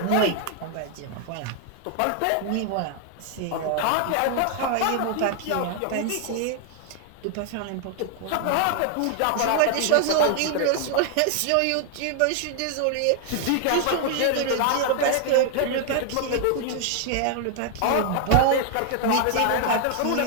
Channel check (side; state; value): both; different; correlation 0.00